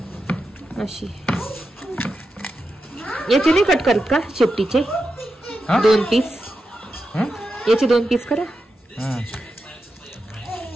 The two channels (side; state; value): both; normal; correlation 0.88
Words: अशी. याचे नाही कट करत का शेपटीचे 2 पीस? याचे 2 पीस करा